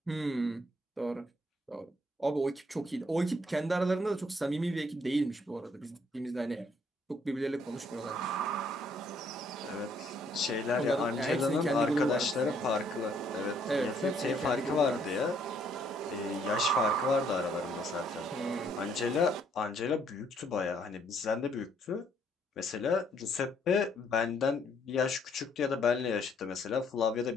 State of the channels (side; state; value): both; normal; correlation 0.67